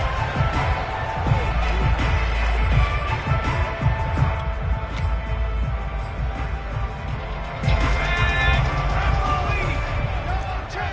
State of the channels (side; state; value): both; identical; correlation 1.00